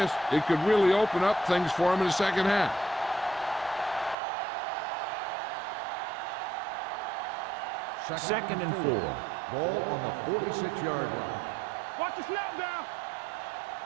it could really open up things for them in the second half. Second and 4. Ball on the 46-yard line. Watch the snap down.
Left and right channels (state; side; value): drops out; left; at 4.2 s